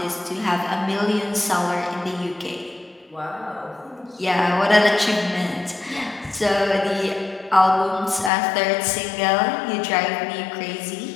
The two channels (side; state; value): right; drops out; at 8.3 s